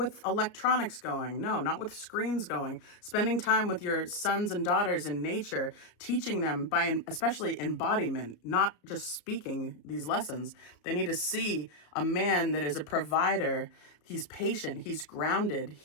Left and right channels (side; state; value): right; late; 33 ms